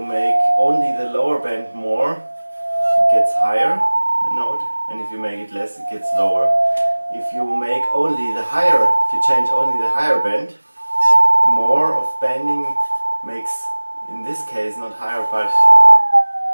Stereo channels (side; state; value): both; inverted; correlation -1.00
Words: only the lower bend more, it gets higher, the note, and if you make it less, it gets lower. If you make only the higher, if you change only the higher bend, more of bending makes, in this case, not higher but